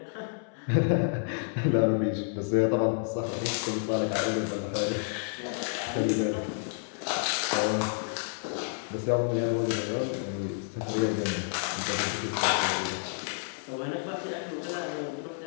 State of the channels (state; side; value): silent; right; 58 dB below the other